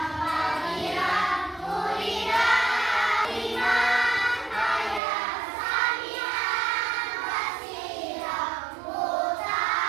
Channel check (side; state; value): left; drops out; at 5.0 s